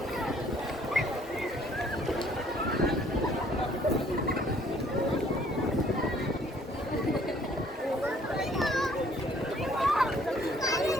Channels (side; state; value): both; normal; correlation 0.60